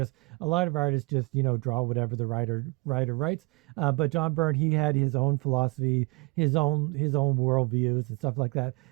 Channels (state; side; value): quieter; left; 27.5 dB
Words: A lot of artists just draw whatever the writer writes. But John Byrne, he had his own philosophy, his own worldviews and stuff like that.